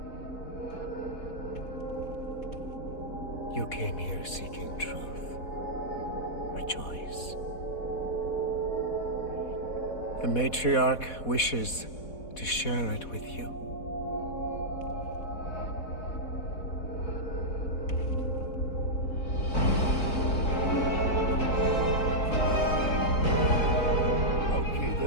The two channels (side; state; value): right; late; 4.1 ms